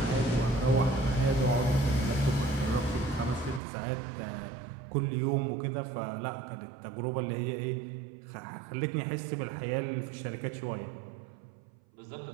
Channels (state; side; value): drops out; left; at 3.6 s